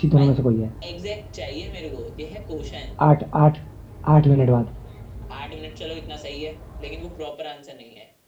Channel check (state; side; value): identical; both; correlation 1.00